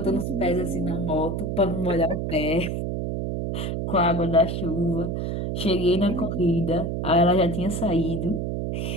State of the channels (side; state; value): right; noise; hum, 2 dB below the sound